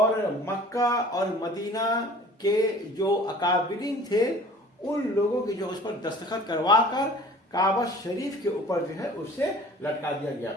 مکہ اور مدینہ کے جو اکابرین تھے، ان لوگوں کی جو اس پر دستخط کروا کر کعبہ شریف کے اوپر جو ہے اسے لٹکا دیا گیا۔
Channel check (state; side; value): normal; both; correlation 0.47